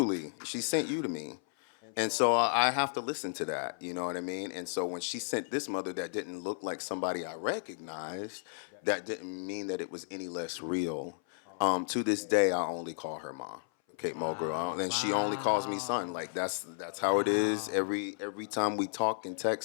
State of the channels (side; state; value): right; silent; 56 dB below the other